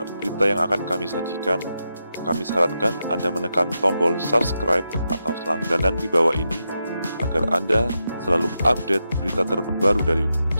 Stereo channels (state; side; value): inverted; both; correlation -0.87